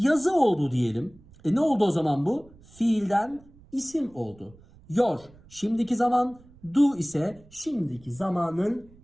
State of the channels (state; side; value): noise; right; rumble, 25 dB below the sound